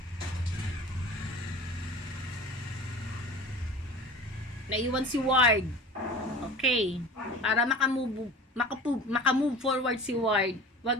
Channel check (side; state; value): both; normal; correlation 0.38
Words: Naiwan si Ward. Okay. Para makamove forward si Ward, wag